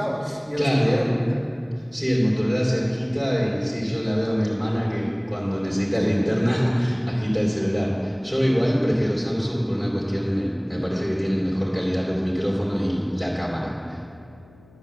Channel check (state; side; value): noise; left; hum, 27 dB below the sound